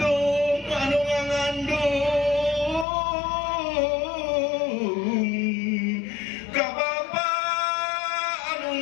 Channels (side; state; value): right; drops out; at 2.9 s